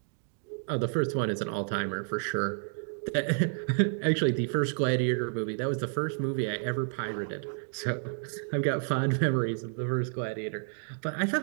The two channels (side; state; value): left; silent; 58 dB below the other